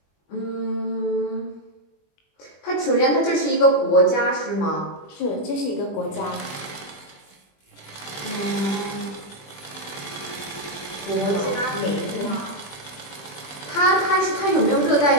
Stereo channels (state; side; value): late; right; 20 ms